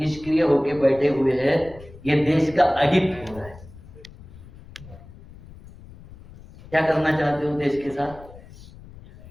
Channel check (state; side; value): noise; left; rumble, 20 dB below the sound